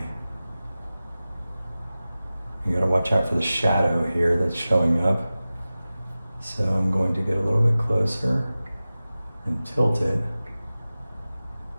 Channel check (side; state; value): both; inverted; correlation -0.96